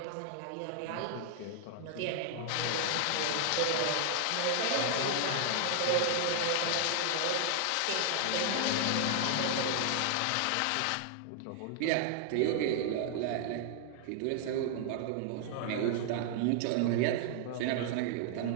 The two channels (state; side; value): different; both; correlation -0.01